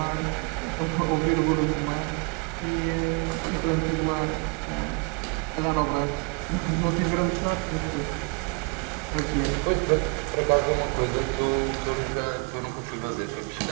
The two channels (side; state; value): left; quieter; 33.7 dB